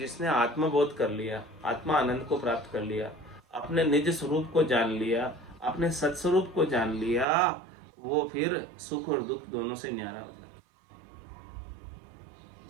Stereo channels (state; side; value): drops out; left; at 7.2 s